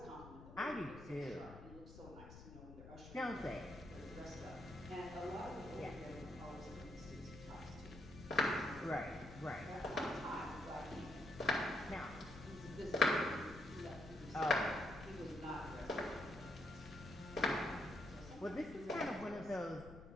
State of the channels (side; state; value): left; noise; rumble, 14 dB below the sound